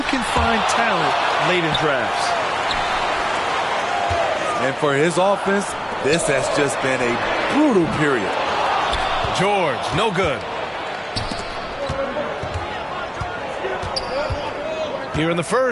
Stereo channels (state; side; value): identical; both; correlation 1.00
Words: can find talent late in drafts. And for his offense, this has just been a brutal period. George, no good. Here in the